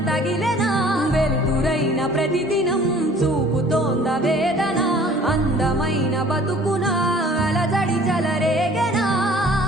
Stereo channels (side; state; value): both; normal; correlation 0.51